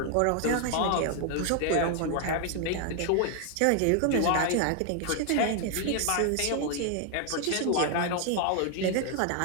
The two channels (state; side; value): different; both; correlation 0.00